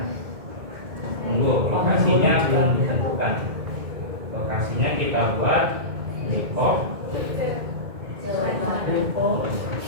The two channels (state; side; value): late; left; 2.1 ms